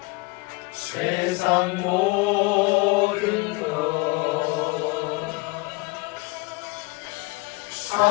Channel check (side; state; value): right; quieter; 24.2 dB